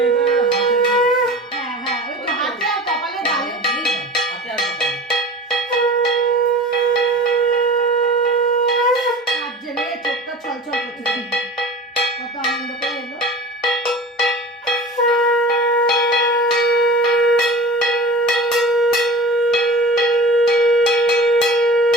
হ্যাঁ হ্যাঁ, ওই তো হাতে আর কপালে গালে। হাতে আর কপালে। হাত জেলে চোখটা ছলছল করছে, কত আনন্দ করে এলো।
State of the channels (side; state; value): both; normal; correlation 0.37